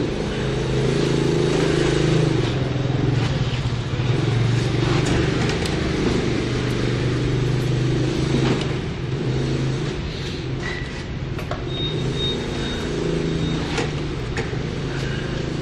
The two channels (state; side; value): identical; both; correlation 1.00